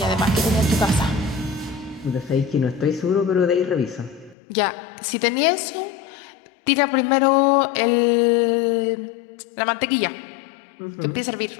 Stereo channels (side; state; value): right; drops out; at 4.4 s